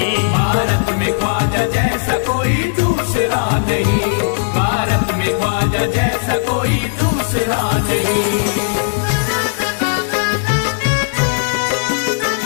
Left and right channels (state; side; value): silent; right; digital silence